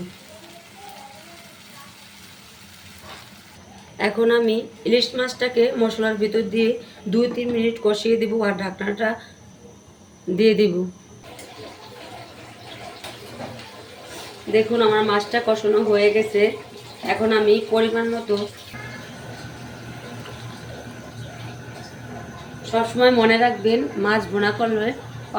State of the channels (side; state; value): both; identical; correlation 1.00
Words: এখন আমি ইলিশ মাছটাকে মশলার ভিতর দিয়ে 2-3 মিনিট কষিয়ে দিব আর ঢাকনাটা দিয়ে দিব। দেখুন আমার মাছটা কষানো হয়ে গেছে। এখন আমি পরিমাণ মতো, সবসময় মনে রাখবেন মাছ ভুনা করলে